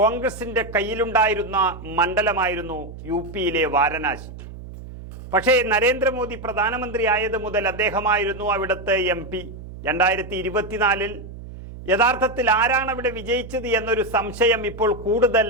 കയ്യിലുണ്ടായിരുന്ന മണ്ഡലമായിരുന്നു യു.പിയിലെ വാരണാസി. പക്ഷേ നരേന്ദ്രമോദി പ്രധാനമന്ത്രി ആയത് മുതൽ അദ്ദേഹമായിരുന്നു അവിടുത്തെ MP. 2024 യഥാർത്ഥത്തിൽ ആരാണ് അവിടെ വിജയിച്ചത് എന്നൊരു സംശയം ഇപ്പോൾ കൂടുതൽ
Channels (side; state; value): right; noise; hum, 13 dB below the sound